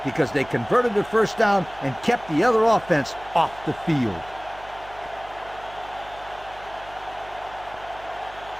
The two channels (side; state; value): right; noise; hum, 21 dB below the sound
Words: Because they converted the first down and kept the other offense off the field.